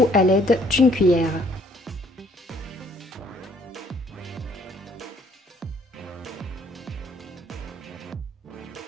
à l'aide d'une cuillère.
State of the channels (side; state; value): both; normal; correlation 0.62